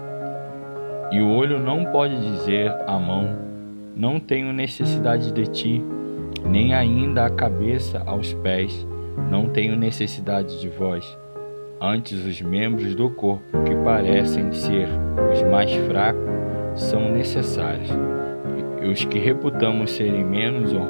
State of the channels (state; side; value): inverted; both; correlation -1.00